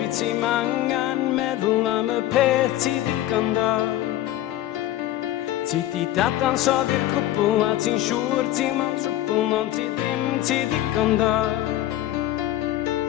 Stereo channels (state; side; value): quieter; right; 14.1 dB